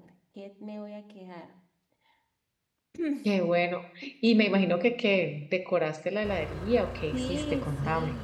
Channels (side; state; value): both; identical; correlation 1.00